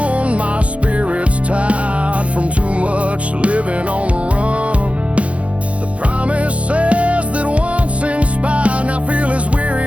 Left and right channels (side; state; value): left; late; 0.063 ms